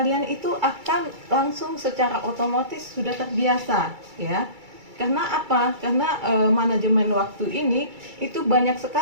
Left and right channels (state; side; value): late; left; 2.3 ms